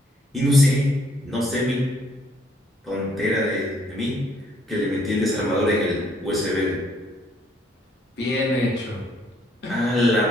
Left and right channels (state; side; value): normal; both; correlation 0.67